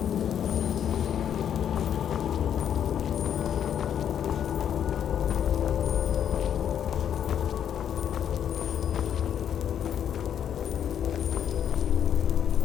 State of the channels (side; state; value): right; quieter; 9.2 dB